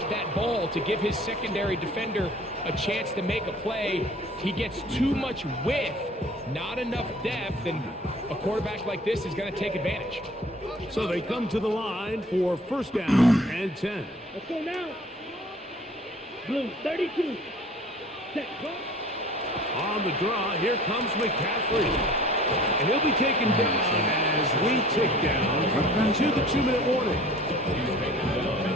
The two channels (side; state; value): both; normal; correlation 0.48